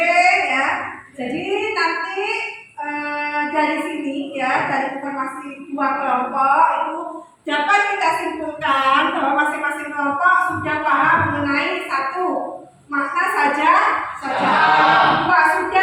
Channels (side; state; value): both; identical; correlation 1.00